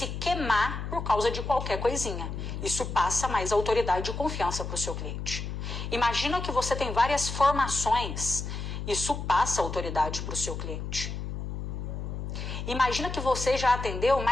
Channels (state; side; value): noise; left; hum, 5 dB below the sound